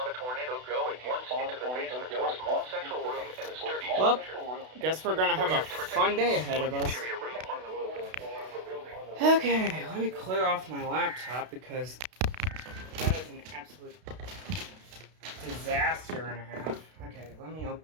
a tornado going once into the basement or small central room in a sturdy Well, structure, guess we're gonna have a fun day ahead of us. interior room on the move. Okay, let me clear off my laptop because that is an absolute disaster and a half. Okay, let me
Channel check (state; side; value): late; left; 32 ms